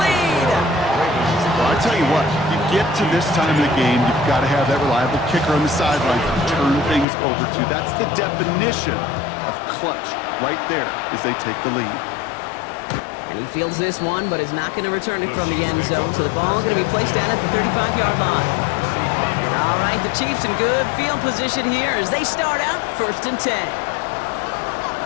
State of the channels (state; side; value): drops out; right; at 7.1 s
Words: lead. Well, I tell you what, you get to this time of the game, you've got to have that reliable kicker on the sideline to turn things over to. That's the definition of clutch right there as they take the lead. And he fields this one, but is not going to return it from the end zone, so the ball is going to be placed down at the 35-yard line. All right, the Chiefs in good field position here as they start out first and 10.